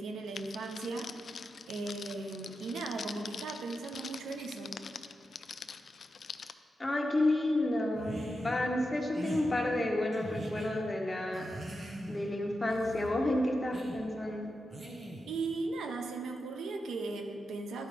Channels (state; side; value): normal; both; correlation 0.88